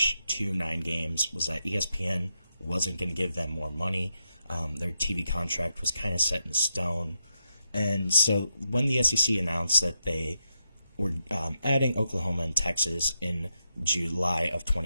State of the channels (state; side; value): inverted; both; correlation -0.84